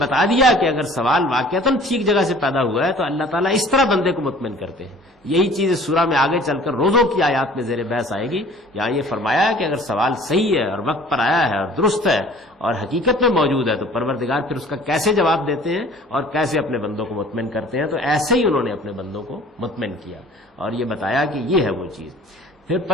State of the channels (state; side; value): normal; both; correlation 0.49